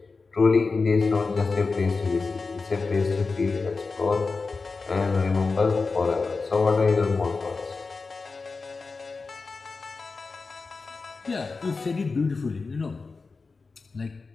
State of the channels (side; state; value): right; quieter; 4.2 dB